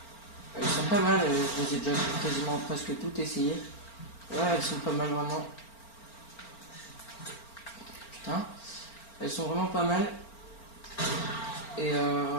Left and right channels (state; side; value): late; right; 4.4 ms